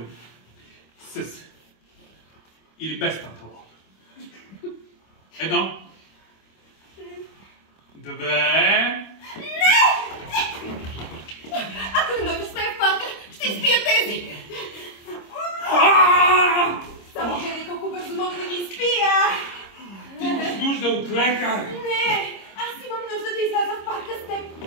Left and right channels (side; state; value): right; late; 25 ms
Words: С. Или без панталон. 1. 2. Ако не дойдеш с мен в парка, ще изпия тези! Само гледай колко бързо мога да ги изпия! Ти имаш нужда от лекар! Не! Аз имам нужда да изляза в парка с теб!